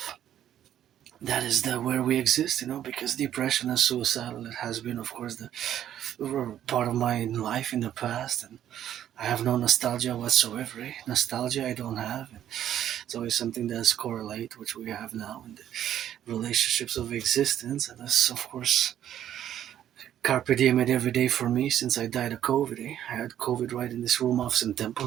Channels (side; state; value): left; quieter; 11.0 dB